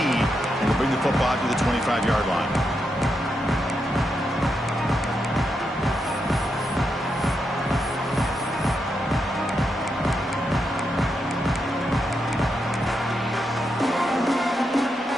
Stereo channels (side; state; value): both; normal; correlation 0.84